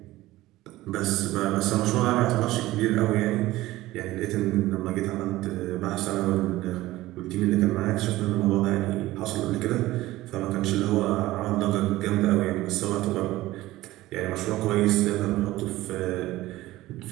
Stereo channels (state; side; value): quieter; left; 17.1 dB